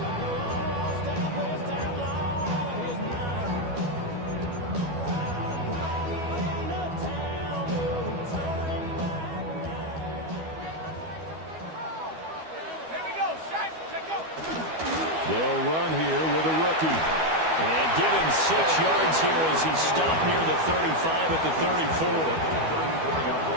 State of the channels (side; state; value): left; late; 12 ms